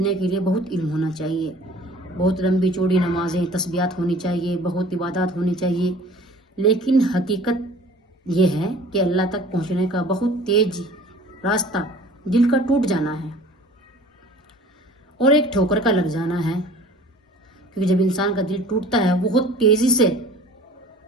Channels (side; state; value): both; normal; correlation 0.47